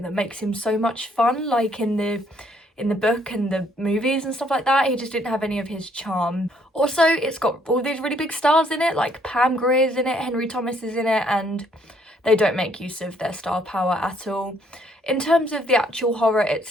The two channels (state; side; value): normal; both; correlation 0.66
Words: that makes him so much fun, like in the book and the movies and stuff like that. He just didn't have any of his charm. Also, it's got all these really big stars in it, like Pam Grier's in it, Henry Thomas is in it, and they don't make use of their star power at all. In terms of the actual horror